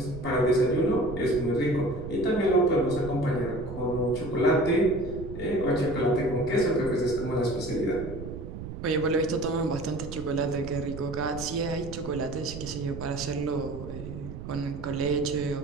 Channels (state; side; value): noise; right; rumble, 10 dB below the sound